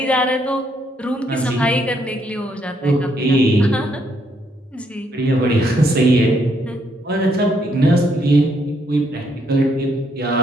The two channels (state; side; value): normal; both; correlation 0.73